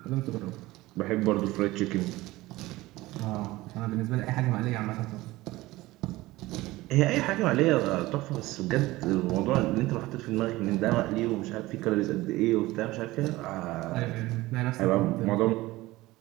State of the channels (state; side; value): quieter; left; 18.9 dB